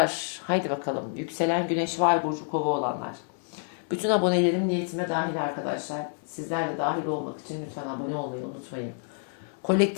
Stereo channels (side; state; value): right; silent; 59 dB below the other